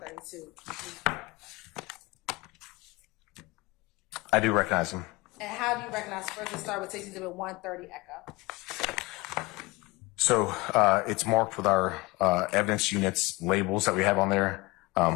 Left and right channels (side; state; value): right; quieter; 23.4 dB